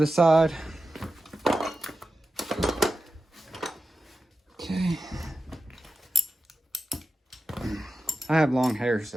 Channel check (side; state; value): both; normal; correlation 0.92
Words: side. Okay. I have long hair,